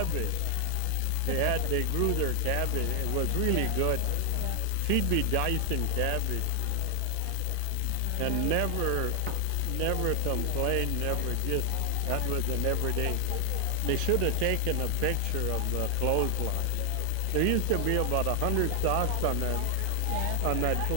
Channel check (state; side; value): different; both; correlation 0.00